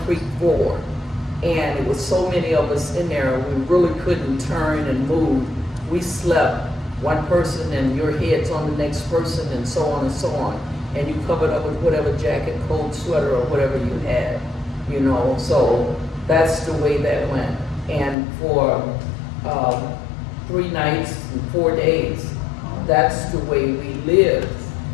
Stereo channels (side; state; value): right; drops out; at 18.2 s